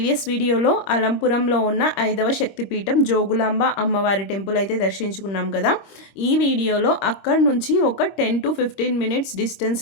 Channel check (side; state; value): right; late; 25 ms